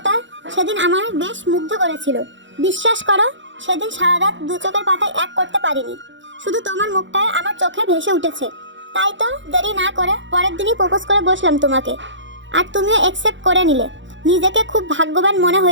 সেদিন আমার বেশ মুগ্ধ করেছিল। বিশ্বাস করো, সেদিন সারা রাত দু চোখের পাতায় এক করতে পারিনি। শুধু তোমার মুখটায় আমার চোখে ভেসে উঠেছে। তাই তো দেরি না করে পরের দিনই প্রপোজ করে বসলাম তোমাকে, আর তুমিও অ্যাকসেপ্ট করে নিলে। নিজেকে খুব ভাগ্যবান মনে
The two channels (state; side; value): late; left; 0.54 ms